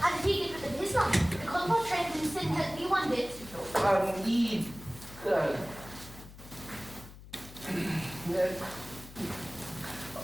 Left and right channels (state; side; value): noise; left; hum, 17 dB below the sound